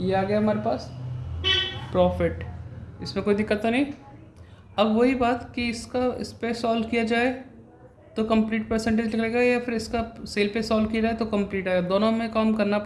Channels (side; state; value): both; identical; correlation 1.00